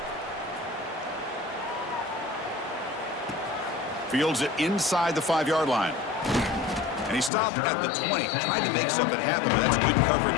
Fields it inside the 5-yard line. And he stopped at the 20. Tried to make something happen, but that's good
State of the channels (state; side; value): drops out; right; at 7.3 s